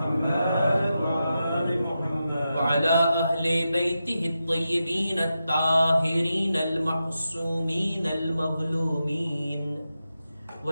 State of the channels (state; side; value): inverted; both; correlation -0.89